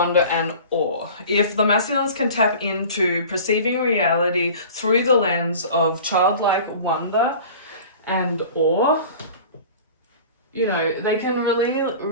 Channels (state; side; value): inverted; both; correlation -0.41